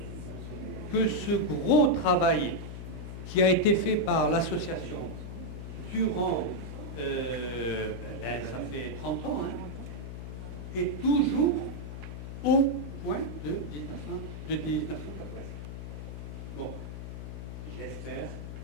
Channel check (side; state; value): left; noise; hum, 8 dB below the sound